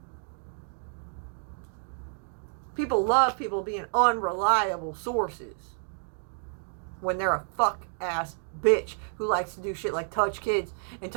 People love people being unreliable sources when they're a fuck ass bitch who likes to do shit like touch kids and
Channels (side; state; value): left; silent; digital silence